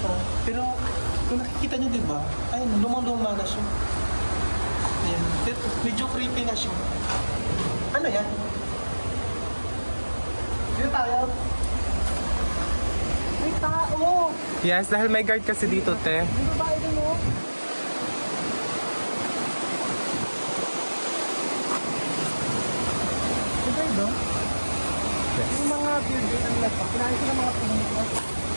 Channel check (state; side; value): inverted; both; correlation -1.00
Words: Pero kung nakikita nyo, diba? Ayun, lumang-luma na siya. Ayan. Medyo creepy na siya. Ano yan? Dito tayo. May tao! Yes, dahil may guard kasi dito, te. Dito ba ito mo? Dito ito? Yes. Yung mga building ang nagpa. Kinahin ko ng mga pinito.